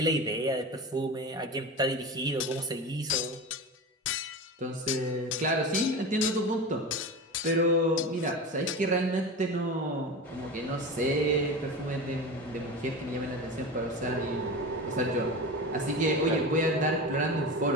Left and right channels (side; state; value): both; normal; correlation 0.27